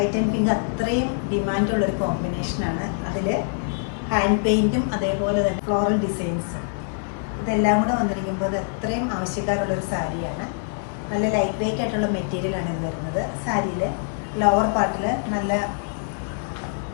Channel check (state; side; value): silent; right; 59 dB below the other